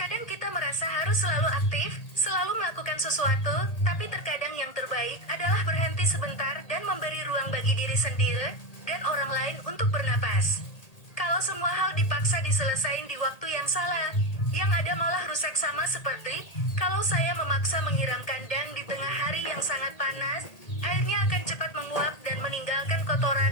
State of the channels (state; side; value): late; right; 1.8 ms